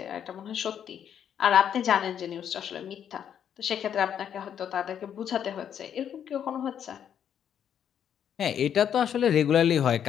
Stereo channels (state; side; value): quieter; right; 9.0 dB